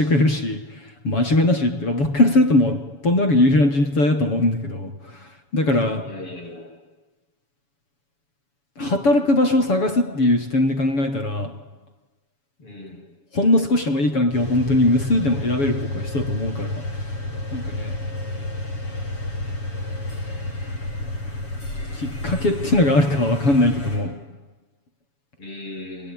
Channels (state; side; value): late; right; 7.1 ms